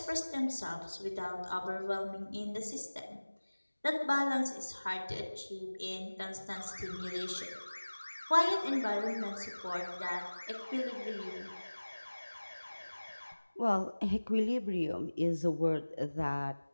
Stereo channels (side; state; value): both; inverted; correlation -1.00